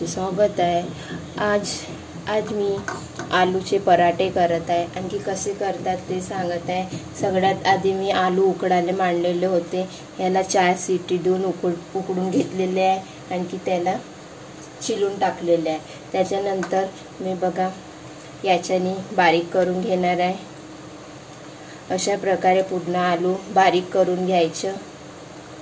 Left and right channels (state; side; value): identical; both; correlation 1.00